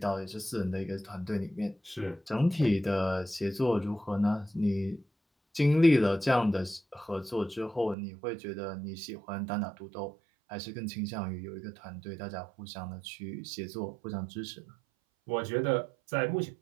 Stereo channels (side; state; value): left; drops out; at 8.0 s